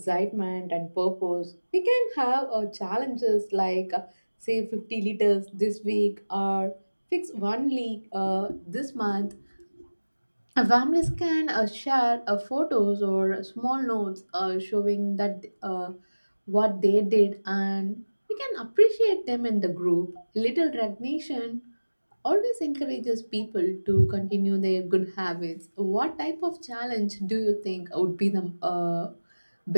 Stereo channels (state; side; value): inverted; both; correlation -1.00